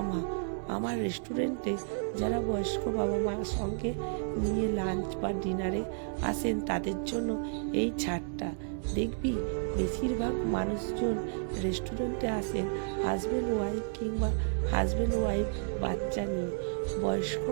মা। আমার রেস্টুরেন্টে যারা বয়স্ক বাবা মার সঙ্গে নিয়ে লাঞ্চ বা ডিনারে আসেন তাদের জন্য এই ছাড়টা। দেখবি বেশিরভাগ মানুষজন রেস্টুরেন্টে আসেন হাজব্যান্ড ওয়াইফ কিংবা হাজব্যান্ড ওয়াইফ বাচ্চা নিয়ে। বয়স্ক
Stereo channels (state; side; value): silent; left; 57 dB below the other